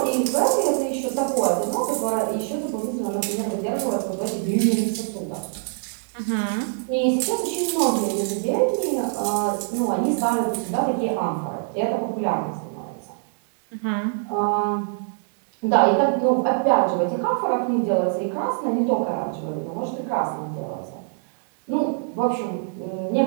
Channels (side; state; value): left; silent; digital silence